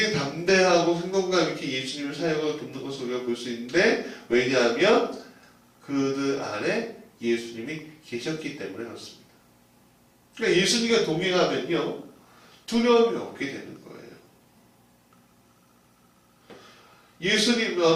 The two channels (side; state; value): both; identical; correlation 1.00